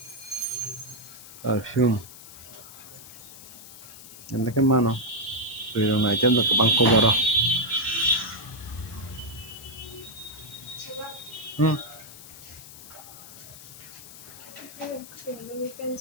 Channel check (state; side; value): noise; left; hiss, 16 dB below the sound